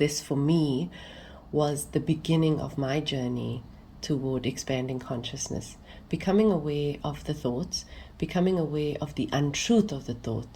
for me was the beginning of my journey toward expanding consciousness, becoming aware of the thoughts, becoming aware of the untruth of the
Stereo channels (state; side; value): identical; both; correlation 1.00